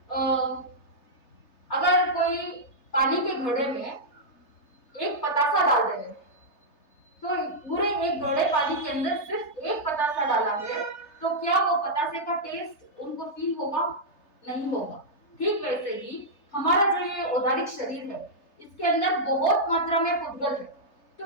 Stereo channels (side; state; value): right; late; 3.3 ms